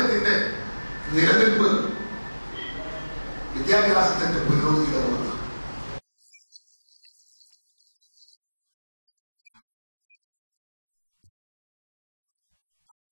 നിലനിൽപ്പ് വിദ്യാഭ്യാസത്തിന്റെ പുരോഗതിയിലാണ്. സയൻസ് പാർക്കിൽ SSA സംഘടിപ്പിച്ച പരിപാടിയിൽ SSA program officer KP Gopinathan പ്രവർത്തനങ്ങൾ വിശദീകരിച്ചു.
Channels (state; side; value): inverted; both; correlation -1.00